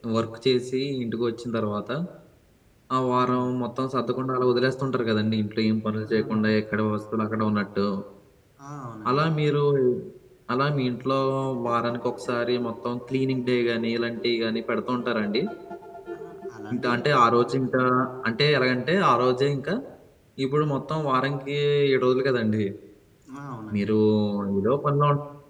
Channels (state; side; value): identical; both; correlation 1.00